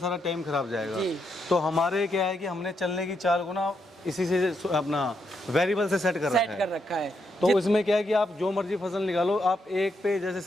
टाइम खराब जाएगा। जी। तो हमारे क्या है कि हमने चलने की चाल को ना इसी से अपना वेरिएबल से सेट कर रखा है। तो इसमें क्या है कि आप जो मर्जी फसल निकालो, आप एक पे जैसे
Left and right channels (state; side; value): normal; both; correlation 0.80